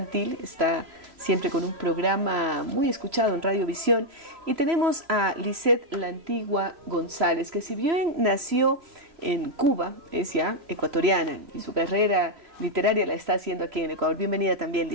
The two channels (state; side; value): late; left; 3.0 ms